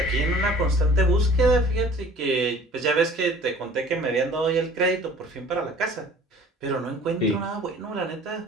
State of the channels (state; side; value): normal; both; correlation 0.49